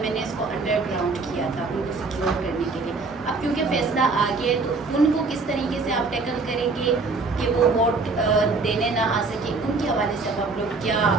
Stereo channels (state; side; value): quieter; left; 3.9 dB